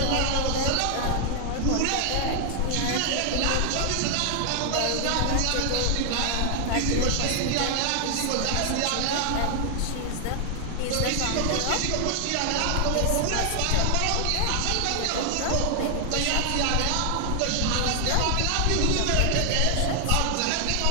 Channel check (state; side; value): different; both; correlation 0.00